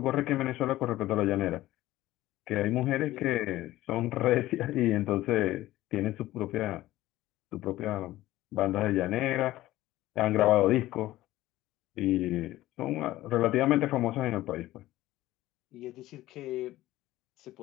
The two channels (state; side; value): quieter; right; 16.1 dB